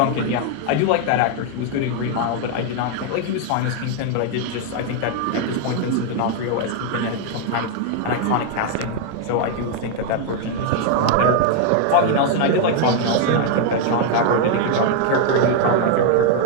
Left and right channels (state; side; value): different; both; correlation 0.00